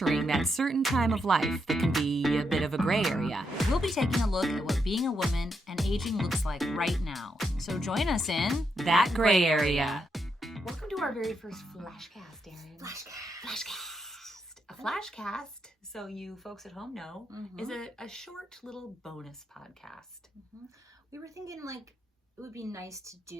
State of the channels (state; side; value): normal; both; correlation 0.81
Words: that certain time of life that can be a bit of a gray area. We'll be taking a look at what being a woman and aging looks like right now. So join us in That Gray Area. Welcome to our very first FlashCast, Erinn. FlashCast. A FlashCast, so you folks at home know, is a short little bonus podcast. We were thinking like it would be nice to